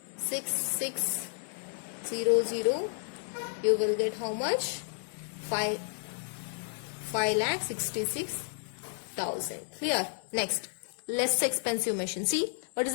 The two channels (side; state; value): right; silent; 56 dB below the other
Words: you will get how much? 5,66,000. 60,000. Clear? Next, less expensive machine. See, what is